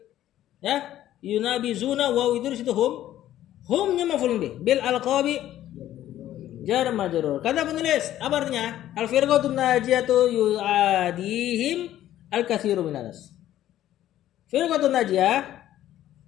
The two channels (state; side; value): quieter; right; 12.8 dB